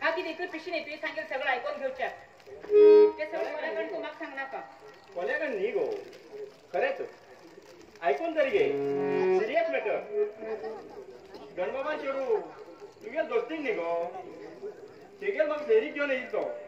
किती इकडे पिशी नाही तुझे सांगेल सगळं ऐकून घेऊच्या ते सगळं कोल्याकडे तू मग सांगणार का कोल्याकडे नाही गो खरेच ऐकून तरी घे सिरियस मॅटर गणबाबा चेडू तुझ्या दोस्तीक नाही गो तेगेल मग फेरी घेऊन येईल तो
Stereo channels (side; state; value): both; identical; correlation 1.00